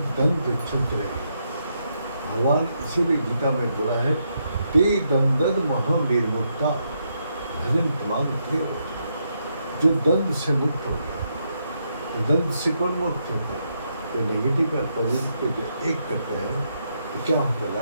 दंड चलते रहे। भगवान इसीलिए गीता में बोला है, ते दंदन महा निर्मुक्ता भजन दिमाग प्रिय हो। जो दंड से मुक्त हो गया, तो दंड से कौन मुक्त होता है? तो नेगेटिव और पॉजिटिव को जो एक करता है तो क्या होता है?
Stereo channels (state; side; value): inverted; both; correlation -0.79